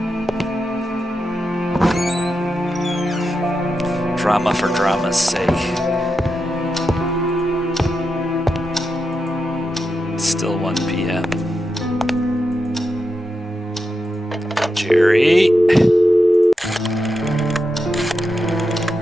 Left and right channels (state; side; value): normal; both; correlation 0.87